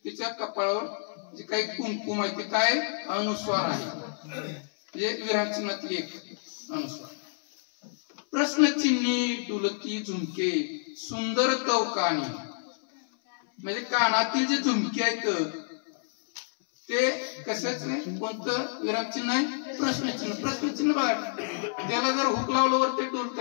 तिच्या कपाळावर जे काही कुंकुम आहे ते काय? अनुस्वार आहे. म्हणजे विरामचिन्हातील एक अनुस्वार. प्रश्नचिन्ही डुलकी झुमके सुंदर तवकानी. म्हणजे कानातील जे झुमके आहेत ते कशाच आहे? कोणतं विरामचिन्ह आहे? प्रश्नचिन्ह. प्रश्नचिन्ह बघा, त्याला जर हुक लावल्यावर ते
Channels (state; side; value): silent; right; 57 dB below the other